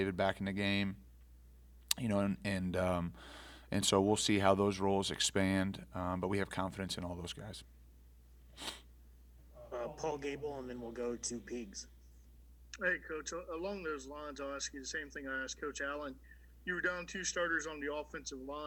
back in the game, and so we'll see how those roles expand. But we have confidence in all those guys. Paul Gable, and then we'll go to Pigs. Hey, Coach, along those lines, I'll ask you the same thing I asked Coach Allen. You were down 2 starters on the offensive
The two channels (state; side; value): identical; both; correlation 1.00